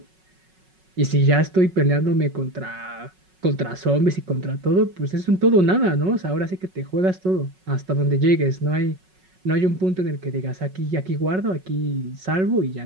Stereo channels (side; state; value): left; late; 5.4 ms